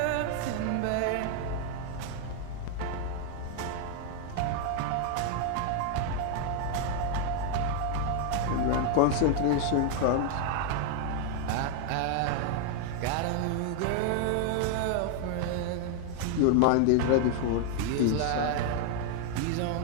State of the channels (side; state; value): both; different; correlation 0.00